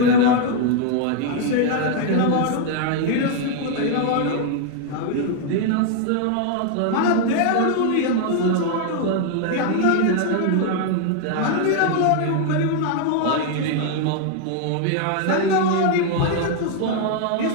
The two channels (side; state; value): both; different; correlation 0.00